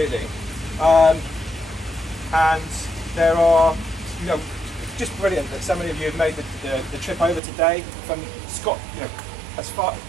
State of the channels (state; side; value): drops out; left; at 7.4 s